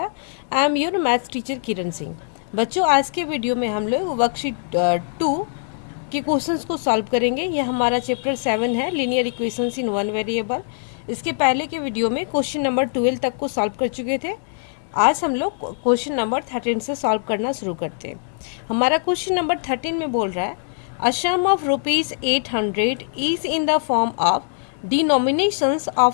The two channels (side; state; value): right; silent; digital silence